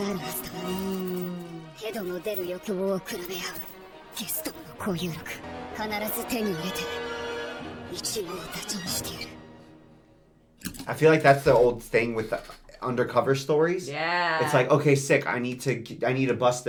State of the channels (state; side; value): identical; both; correlation 1.00